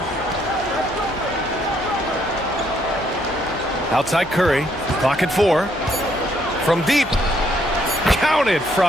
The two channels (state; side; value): noise; left; hum, 20 dB below the sound